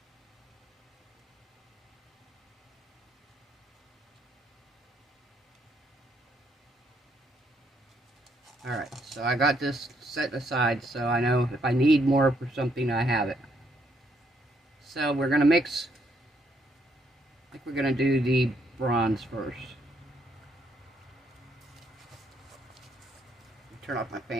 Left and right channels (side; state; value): both; normal; correlation 0.72